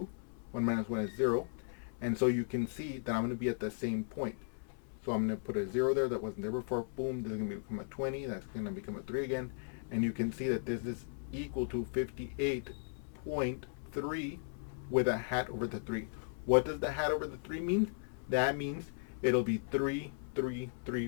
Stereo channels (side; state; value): right; silent; 53 dB below the other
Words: 1 minus 1 is 0. And so you can see that I'm going to be at the same point. So I'm going to put a 0 there that wasn't there before. Boom. This is going to become a 20. That's going to become a 3 again. And you can see that this is equal to 58.3 with a hat over the 3. What does the hat over the 3 mean? That means it'll be 3, 3,